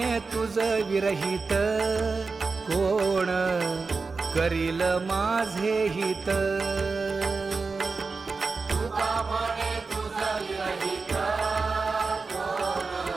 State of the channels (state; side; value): quieter; left; 4.3 dB